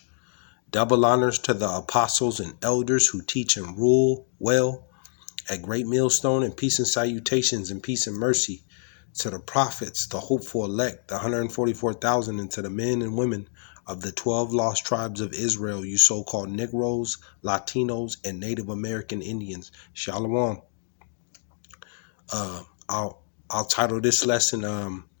Double honors to the apostles and elders who teach and rule well at Great Millstone, and peace and salutations and peace and mercy to the prophets, the hopeful elect, the 144,000, and to the men and women of the 12 lost tribes of Israel, you so-called Negroes, Latinos, and Native American Indians. Shalom. I'll title this lesson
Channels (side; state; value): right; silent; 61 dB below the other